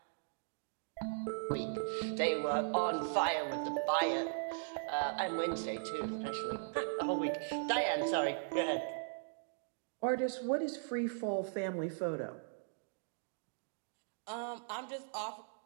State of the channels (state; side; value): silent; left; digital silence